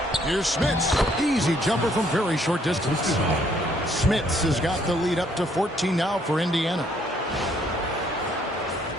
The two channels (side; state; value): both; normal; correlation 0.67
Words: Here's Smits. Easy jumper from very short distance. Smits has got the lead up to 14 now for Indiana.